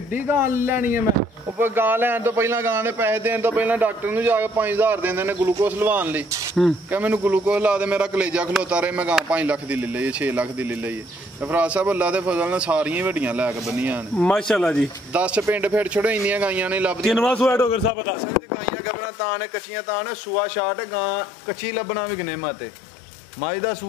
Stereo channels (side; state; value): right; drops out; at 17.9 s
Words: ਗਾਂ ਲੈਣੀ ਹੈ ਮੈਂ ਉਹ ਗਾਂ ਲੈਣ ਤੋਂ ਪਹਿਲਾਂ ਗਾਂ ਦੇ ਪੈਸੇ ਦੇਣ ਤੋਂ ਪਹਿਲਾਂ ਡਾਕਟਰ ਨੂੰ ਜਾ ਕੇ 5000 ਦਿੰਦੇ ਨੇ ਗਲੂਕੋਸ ਲਵਾਉਣ ਲਈ ਕਿ ਮੈਨੂੰ ਗਲੂਕੋਸ ਲਾ ਦੇ ਮੇਰਾ ਕਲੇਜਾ ਖਲੋਤਾ ਰਹੇ ਮੈਂ ਗਾਂ 5 ਲੱਖ ਦੀ ਲੈ ਲਈ 6 ਲੱਖ ਦੀ ਲੈ ਲਈ ਤੇ ਫਰਾਜ਼ ਸਾਹਿਬ ਅੱਲਾ ਦੇ ਫਜ਼ਲ ਨਾਲ ਸਾਰੀਆਂ ਵੱਡੀਆਂ ਲੈ ਕੇ ਬੰਨੀਆਂ ਨੇ ਮਾਸ਼ਾਅੱਲਾ ਜੀ 10 ਪਿੰਡ ਫਿਰ ਛੋੜੋ ਇੰਨੀਆਂ ਗਾਈਆਂ ਨੇ ਲੱਭਦੀਆਂ ਕਿੰਨਵਾ ਸੂਆ ਡੋਗਰ ਸਾਹਿਬ ਬਤਾ ਗਾਈਆਂ ਤਾਂ ਨੇ ਕੱਚੀਆਂ ਤਾਂ ਨੇ ਸੂਆ ਛਾਟ ਗਾਂ ਕੱਚੀ ਲੱਭਣਾ ਵੀ ਗਨੇ ਮਾਤੇ ਮਾਈ ਦਾ